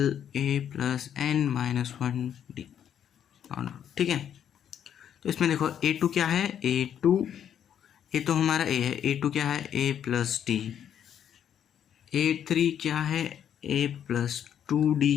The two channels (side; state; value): right; quieter; 9.3 dB